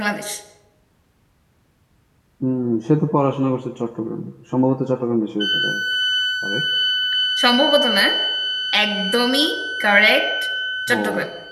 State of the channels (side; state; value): both; identical; correlation 1.00